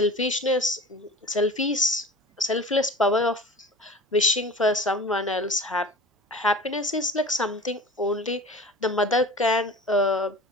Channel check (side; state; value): both; normal; correlation 0.38